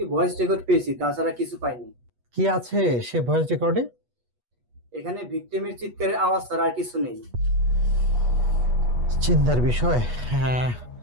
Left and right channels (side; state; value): left; late; 8.3 ms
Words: ভয়েস রেকর্ড পেয়েছি, তাছাড়া কিছু পাইনি। কি আছে সে ভয়েস রেকর্ডে? এখানে ভিকটিমের চিৎকারের আওয়াজ ছাড়া আর কিছু নেই। চিন্তার বিষয়। হ্যাঁ,